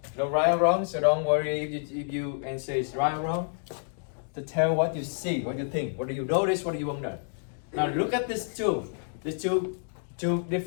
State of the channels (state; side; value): silent; right; digital silence